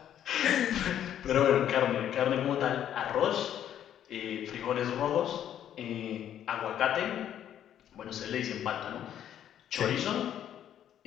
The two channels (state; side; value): quieter; right; 10.4 dB